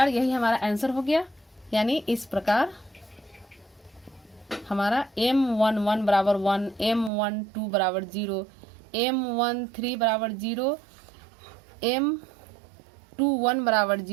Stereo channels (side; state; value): left; drops out; at 7.1 s